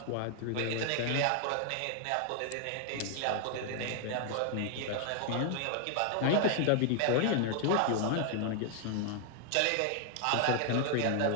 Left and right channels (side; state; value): both; different; correlation 0.00